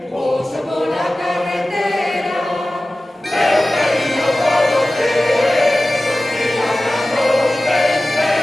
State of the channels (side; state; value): both; normal; correlation 0.96